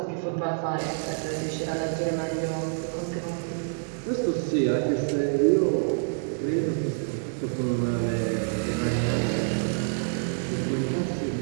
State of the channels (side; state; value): left; silent; digital silence